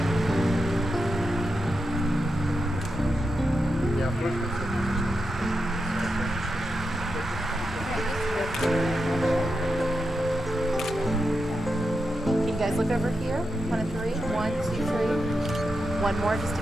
Can you guys look over here? One and three. 1, 2, 3. One more just to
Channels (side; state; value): both; normal; correlation 0.87